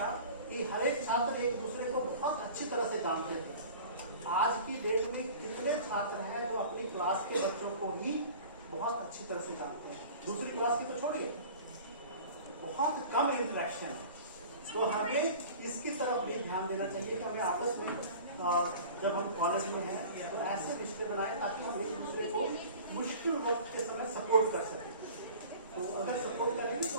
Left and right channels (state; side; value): inverted; both; correlation -0.41